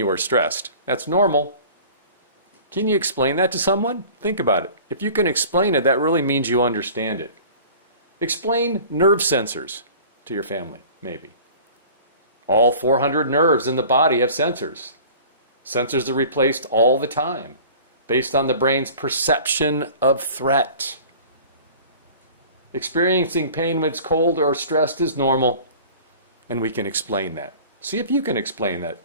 are stressed. That's normal. Can you explain that to someone? Think about it. If you can explain it, that really means you understand it. Explain nerve sensors to your family, maybe. All 400 nerves in the body have sensors. Sensors are replaced all the time based on the brain's perception of threat. Experiencing pain when it's cold or stressed is normal, and we can explain that. See if you can explain that,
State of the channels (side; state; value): both; inverted; correlation -0.44